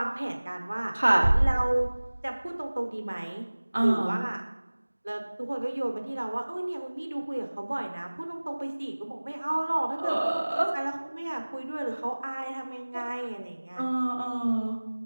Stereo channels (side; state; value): both; inverted; correlation -1.00